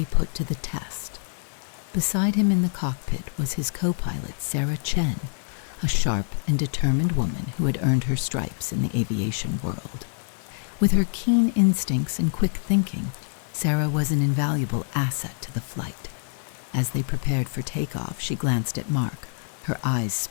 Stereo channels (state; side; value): silent; right; 60 dB below the other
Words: put to the test. Beside him in the cockpit was his co-pilot, Sarah Chen, a sharp and determined woman who had earned her stripes in the aviation world. With her keen instincts and quick thinking, Sarah was an invaluable asset to the flight. As they prepared for takeoff, she glanced at Mark, her eyes